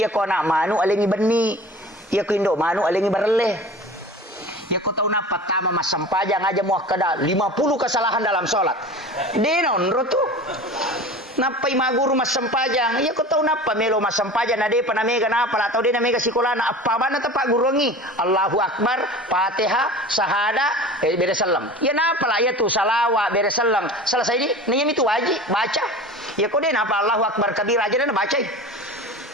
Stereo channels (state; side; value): normal; both; correlation 0.37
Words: ko na manu alengi beni ya ko indo manu alengi bareleh ya ku tahu napa tama mas sampajang aja mau kada 50 kesalahan dalam sholat denon rotu napai maguru mas sampajang ya ku tahu napa melo mas sampajang nade panamega napa atau dia namega sikolana apa mana tepak gurungi Allahu Akbar Fatihah sahada bere salam ya napa lah ya tu salawat bere salam selesai ini nanya itu wajib baca ya ku dia napa Allahu Akbar kabir aja dan baca